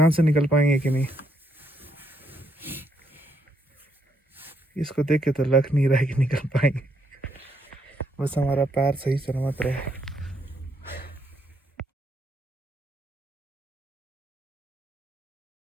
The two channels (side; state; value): both; normal; correlation 0.75